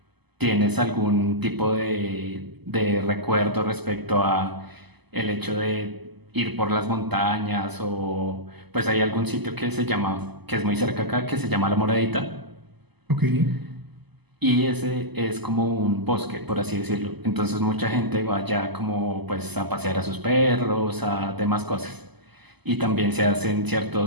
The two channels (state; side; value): late; left; 0.99 ms